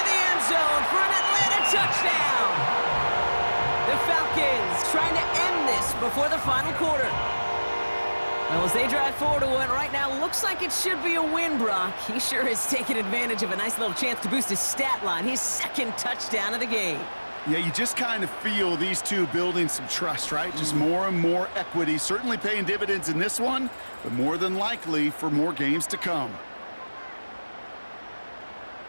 the end zone for an Atlanta touchdown. The Falcons trying to end this before the final quarter. Well, as they drive forward to what right now looks like it should be a win, Brock. He sure has taken advantage of a nice little chance to boost his stat line. His second touchdown of the game. Yeah, you just kind of feel these two building some trust, right? Just more and more equity. Certainly paying dividends in this one, but more than likely for more games to come.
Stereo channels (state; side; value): inverted; both; correlation -1.00